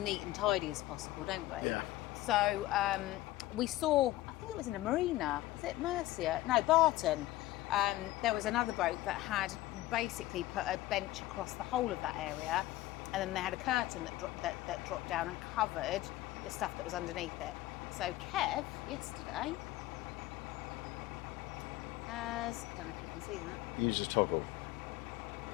and tidy as possible, don't we? Yeah. So we saw, I think it was in a marina, was it Mercia? No, Barton. There was another boat that had basically put a bench across the whole of that area, and then they had a curtain that dropped down and covered the stuff that was underneath it. So Kev, yesterday, I don't know if you can see that. Use a toggle.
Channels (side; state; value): right; quieter; 16.6 dB